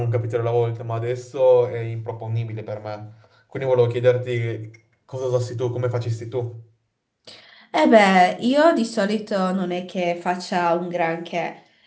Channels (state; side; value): identical; both; correlation 1.00